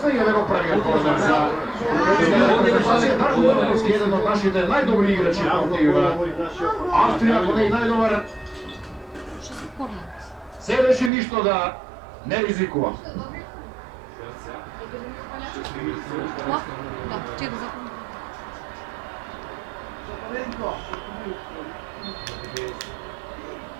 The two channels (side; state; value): left; drops out; at 11.1 s